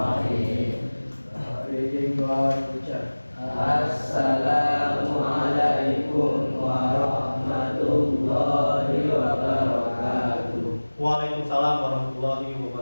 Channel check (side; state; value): both; inverted; correlation -1.00